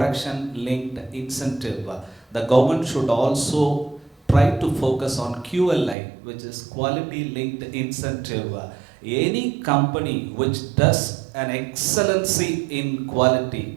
linked incentive. The government should also try to focus on QLI, which is quality linked incentive. Any company which does an excellency in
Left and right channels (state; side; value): drops out; left; at 6.0 s